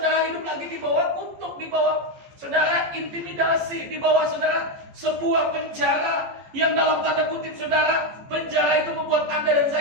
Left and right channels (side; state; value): left; late; 14 ms